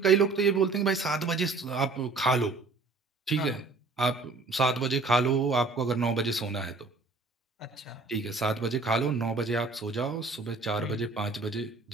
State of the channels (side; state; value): left; quieter; 3.8 dB